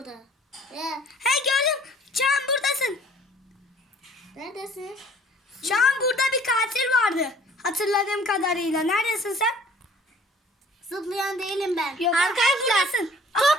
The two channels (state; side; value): normal; both; correlation 0.53